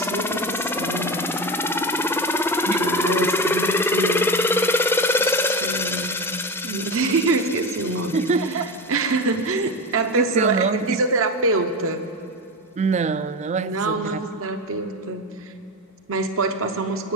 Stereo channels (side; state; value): both; normal; correlation 0.21